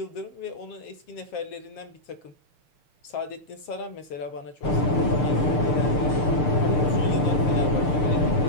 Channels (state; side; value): late; right; 6.7 ms